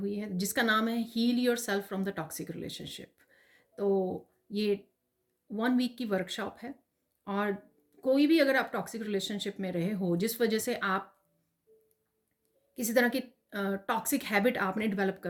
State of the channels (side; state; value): both; identical; correlation 1.00